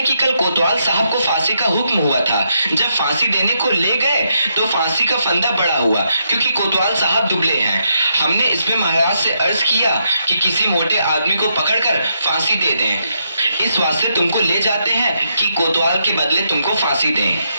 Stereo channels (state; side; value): inverted; both; correlation -0.79